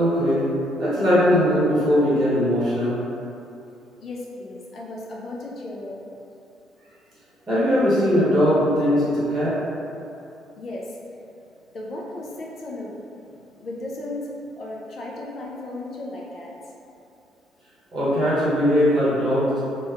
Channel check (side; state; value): both; normal; correlation 0.70